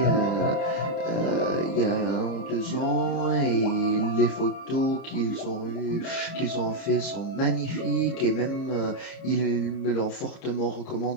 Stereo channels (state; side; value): late; right; 30 ms